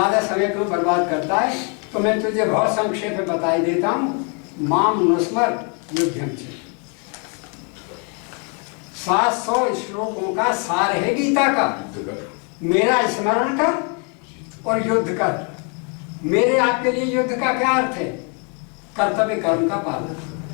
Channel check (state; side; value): quieter; right; 36.8 dB